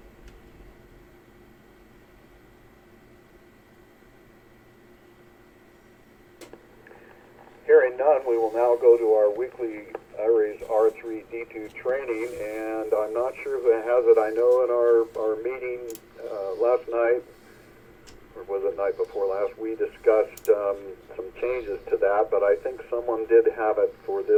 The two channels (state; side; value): identical; both; correlation 1.00